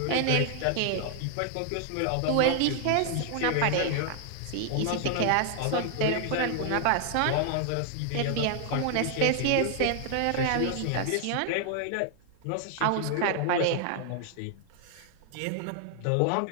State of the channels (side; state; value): both; different; correlation 0.00